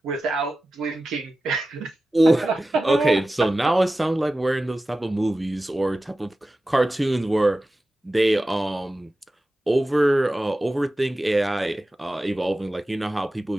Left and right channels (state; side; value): normal; both; correlation 0.95